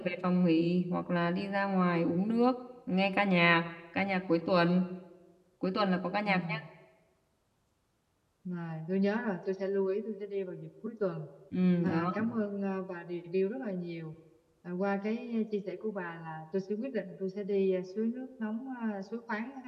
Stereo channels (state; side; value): identical; both; correlation 1.00